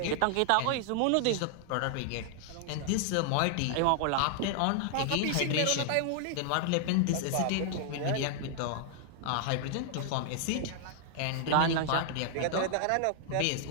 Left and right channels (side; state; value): both; different; correlation 0.00